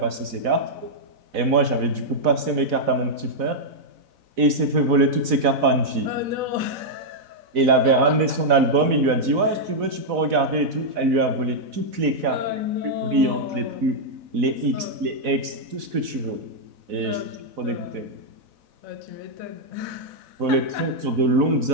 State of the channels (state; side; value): late; left; 4.0 ms